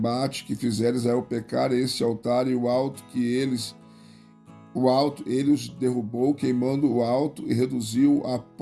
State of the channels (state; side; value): identical; both; correlation 1.00